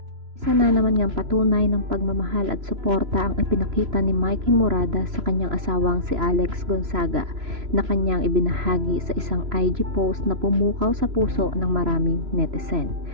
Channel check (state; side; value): late; left; 3.0 ms